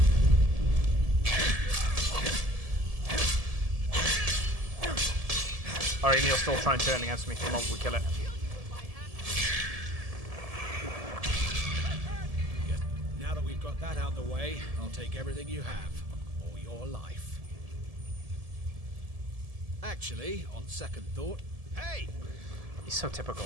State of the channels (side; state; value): left; late; 1.7 ms